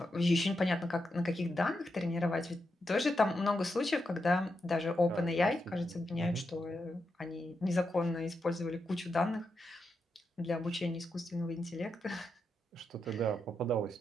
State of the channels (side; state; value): both; normal; correlation 0.85